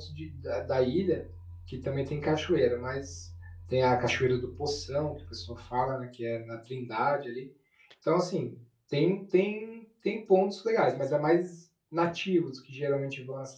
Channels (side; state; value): both; identical; correlation 1.00